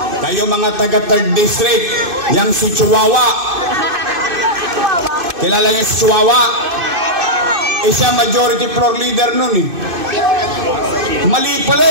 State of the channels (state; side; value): late; left; 2.5 ms